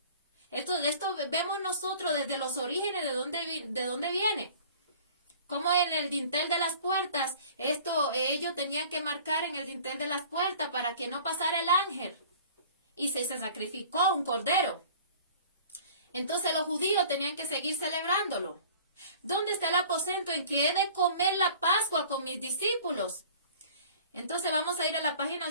Esto vemos nosotros desde los orígenes de dónde viene. Como en el dintel de las puertas, ellos tenían que marcar en el dintel de las puertas para que no pasara el ángel. Y se sacrificó un cordero. Entonces los judíos tenían que seguir celebrándolo. ¿Dónde está el aposento en que he de comer la Pascua con mis discípulos? Entonces vamos a ir a la página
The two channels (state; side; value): inverted; both; correlation -0.47